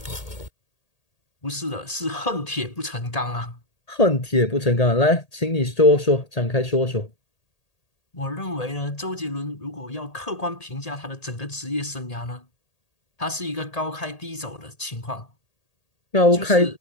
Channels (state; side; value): late; right; 1.8 ms